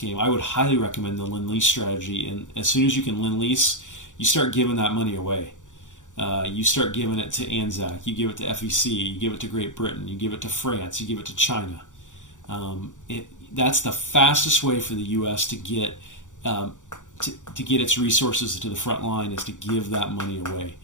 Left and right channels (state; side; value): late; right; 0.86 ms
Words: I would highly recommend the Lend-Lease strategy. And as soon as you can Lend-Lease, you start giving that money away. You start giving it to Anzac, you give it to FEC, you give it to Great Britain, you give it to France, you give it to China. That's the fastest way for the U.S. to get to get its resources to the front line, is to give that money away.